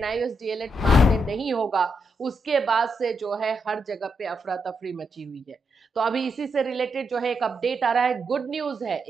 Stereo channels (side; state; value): both; normal; correlation 0.82